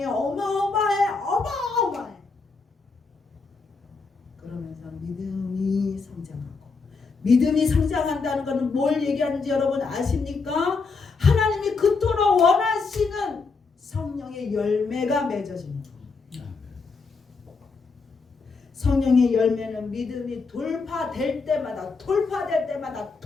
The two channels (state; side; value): quieter; right; 4.5 dB